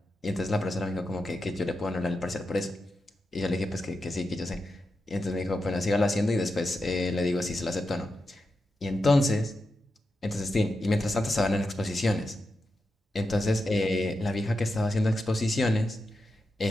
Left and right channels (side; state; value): both; normal; correlation 0.88